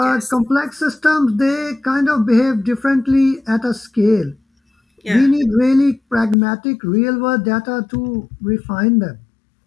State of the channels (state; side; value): drops out; right; at 6.4 s